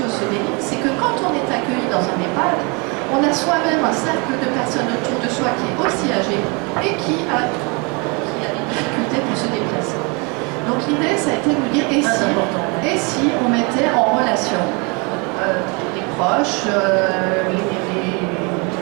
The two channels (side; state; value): left; quieter; 30.9 dB